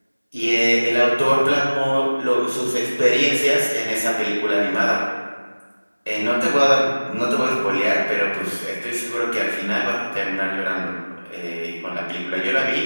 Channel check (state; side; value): inverted; both; correlation -1.00